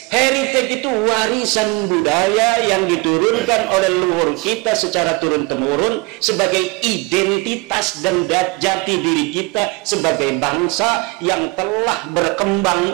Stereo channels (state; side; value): quieter; left; 26.6 dB